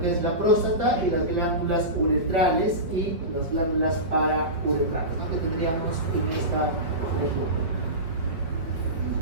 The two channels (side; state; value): left; late; 5.4 ms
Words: que es la próstata y las glándulas uretrales y las glándulas parauretrales, ¿no? Que tendríamos en esta región.